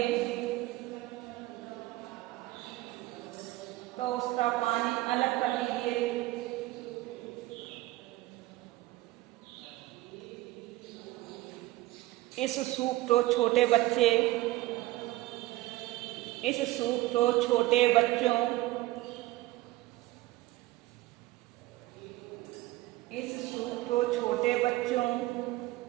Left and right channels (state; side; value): quieter; left; 17.8 dB